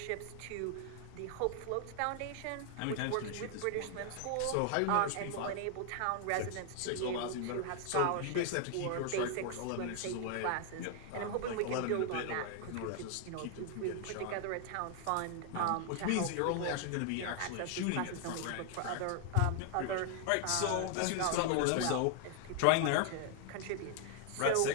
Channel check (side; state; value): both; different; correlation 0.00